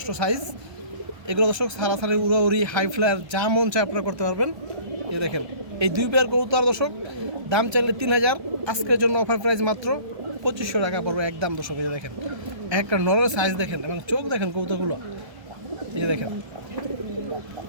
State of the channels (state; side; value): late; left; 1.2 ms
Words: সাইজ। এগুলো দর্শক সারাসারি উড়াউড়ি হাই ফ্লায়ার যা মন চায় আপনারা করতে পারবেন। এই দেখেন এই 2 পেয়ার কবুতর দর্শক, দাম চাইলে 3000, আজকের জন্য অফার প্রাইস মাত্র 2500 টাকা পড়বে একদম দর্শক। এই যে দেখেন একটা নরের সাইজ দেখেন এবং চোখ দেখেন কবুতরগুলো। এই যে দেখেন